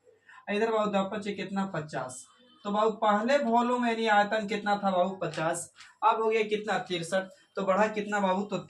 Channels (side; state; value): both; identical; correlation 1.00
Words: इधर बाबू 2 कितना 50। तो बाबू पहले वॉल्यूम यानी आयतन कितना था बाबू 50, अब हो गया कितना 63। तो बढ़ा कितना बाबू तो